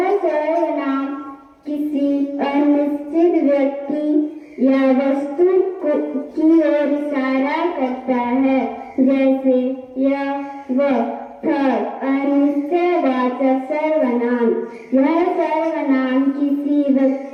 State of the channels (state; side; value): identical; both; correlation 1.00